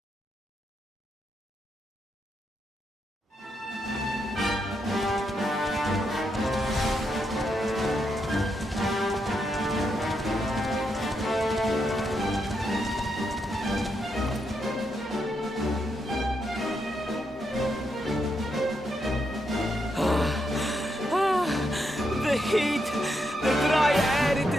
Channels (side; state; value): both; normal; correlation 0.81